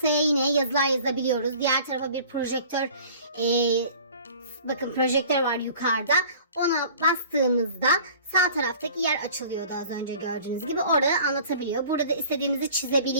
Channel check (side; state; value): both; inverted; correlation -0.47